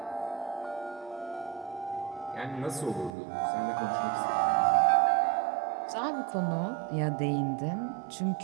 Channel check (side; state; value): left; drops out; at 3.1 s